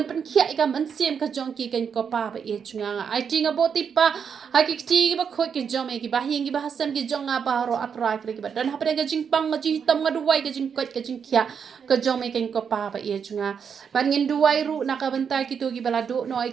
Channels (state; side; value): quieter; left; 6.9 dB